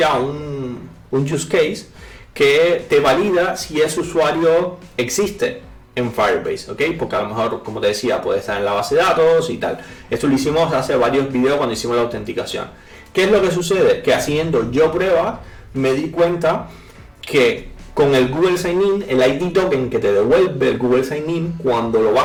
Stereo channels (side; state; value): both; identical; correlation 1.00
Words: use case que te valida si ese usuario existe en Firebase, ¿ok? Porque a lo mejor, como te decía, puede estar en la base de datos y tal. Esto lo hicimos hace varios videos cuando hicimos la autenticación. ¿Qué es lo que sucede? Que haciendo yo pruebas me di cuenta que con el Google Sign-In, el ID token que te devuelve el Google Sign-In, cuando lo